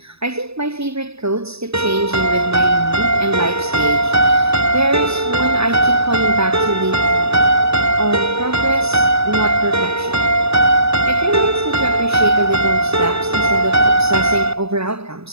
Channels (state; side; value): late; left; 0.79 ms